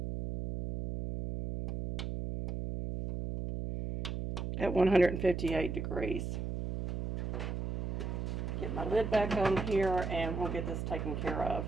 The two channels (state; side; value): noise; right; hum, 3 dB below the sound